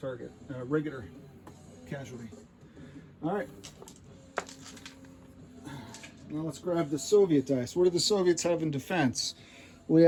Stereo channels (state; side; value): identical; both; correlation 1.00